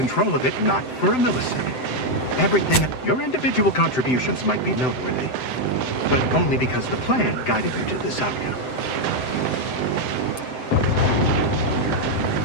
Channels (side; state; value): right; late; 7.8 ms